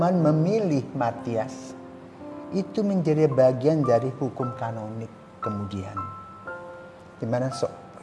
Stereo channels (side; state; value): both; identical; correlation 1.00